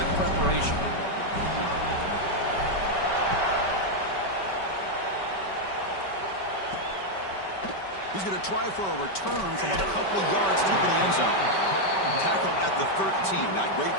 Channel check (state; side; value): late; right; 5.2 ms